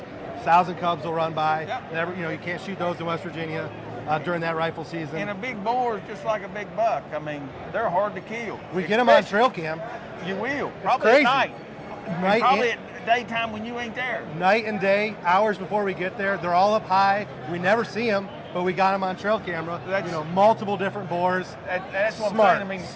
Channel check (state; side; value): identical; both; correlation 1.00